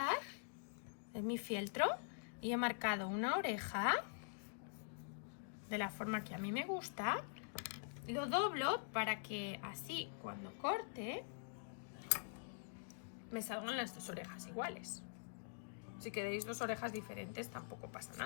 en mi fieltro, y he marcado una oreja de la forma que a mí me gusta. Lo doblo para que así cuando corte me salgan las dos orejas iguales. Si queréis dos orejas diferentes tampoco pasa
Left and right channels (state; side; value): silent; right; digital silence